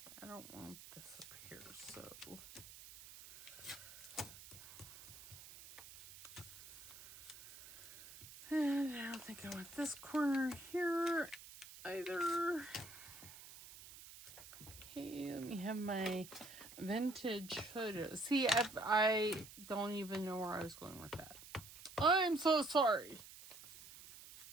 I don't want this up here, so. And I don't think I want this corner here either. Okay, let me have my vintage photos. See, I don't even know where I was going with that. I'm so sorry.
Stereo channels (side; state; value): right; noise; hiss, 16 dB below the sound